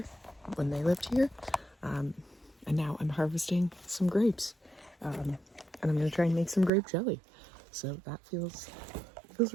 when they lived here. And now I'm harvesting some grapes. And I'm gonna try and make some grape jelly. So that feels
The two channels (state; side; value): drops out; left; at 6.7 s